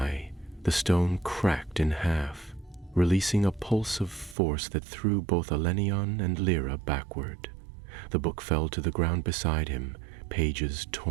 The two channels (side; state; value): left; drops out; at 4.4 s